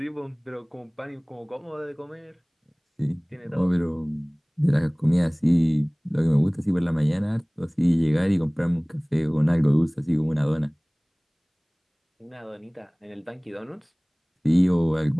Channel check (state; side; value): identical; both; correlation 1.00